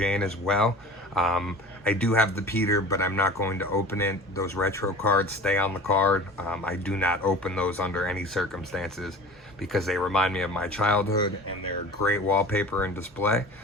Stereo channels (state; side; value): normal; both; correlation 0.39